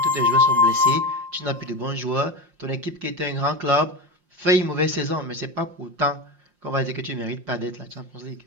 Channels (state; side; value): late; left; 5.6 ms